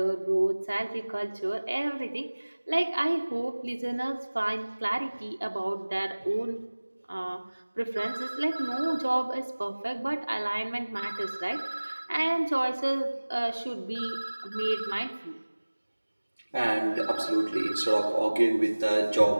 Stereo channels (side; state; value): both; inverted; correlation -1.00